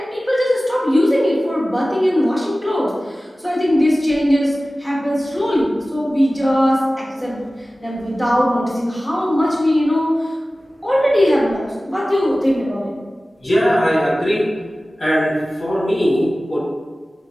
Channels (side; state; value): both; normal; correlation 0.96